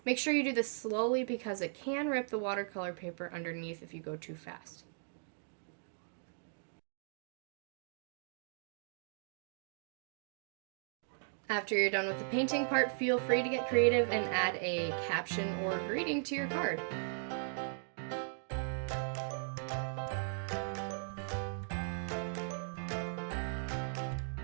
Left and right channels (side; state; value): left; silent; digital silence